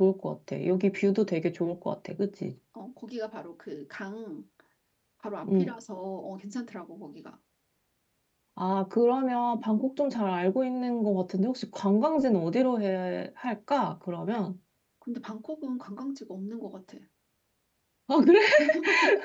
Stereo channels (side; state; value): both; identical; correlation 1.00